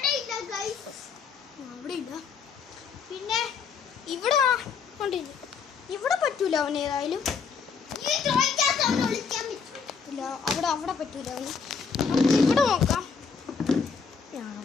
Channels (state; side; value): quieter; right; 5.8 dB